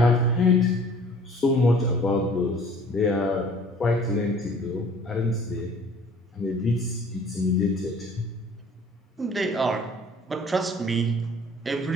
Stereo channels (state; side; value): normal; both; correlation 0.52